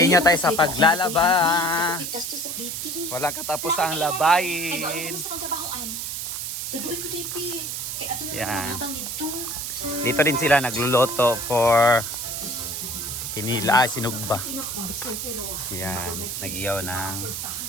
tayo sa paglalaba. Wala katapos ang labayin. Yan. Dito din sila nagluluto for kinila, sinugba. Yan, nag-iyaw ng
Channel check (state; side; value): noise; right; hiss, 4 dB below the sound